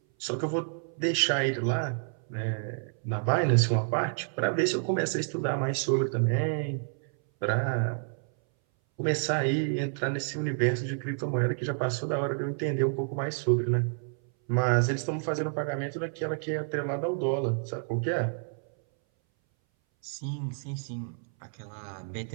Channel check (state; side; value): silent; left; 58 dB below the other